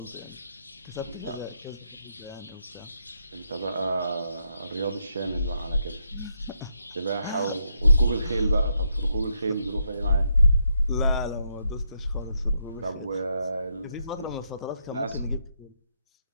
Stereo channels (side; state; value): both; inverted; correlation -0.79